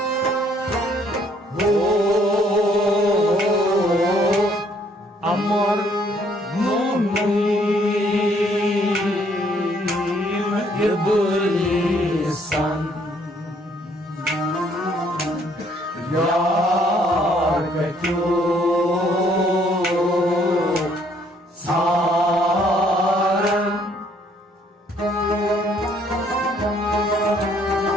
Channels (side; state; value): both; normal; correlation 0.65